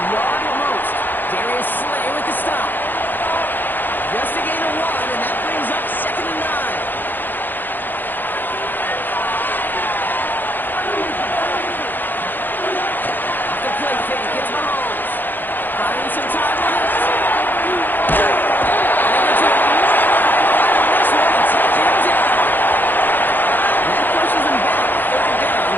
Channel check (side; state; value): right; late; 0.090 ms